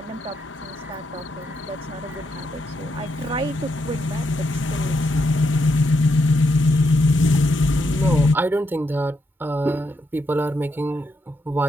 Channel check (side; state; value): both; normal; correlation 0.80